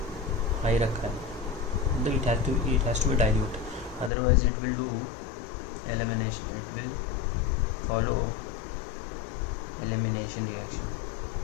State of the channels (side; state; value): right; drops out; at 4.1 s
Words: हाई रखा है, मतलब it has to be dilute, otherwise it will do elimination, it will follow elimination reaction.